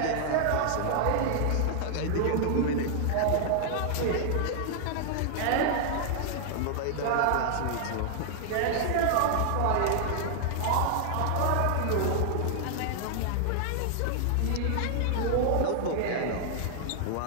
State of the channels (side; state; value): both; different; correlation 0.00